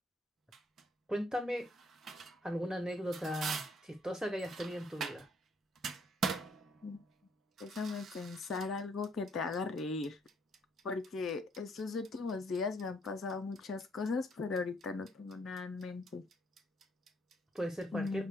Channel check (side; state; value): both; normal; correlation 0.67